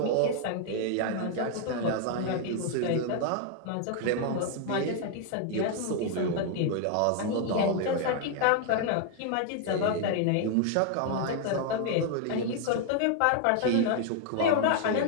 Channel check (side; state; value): both; different; correlation 0.00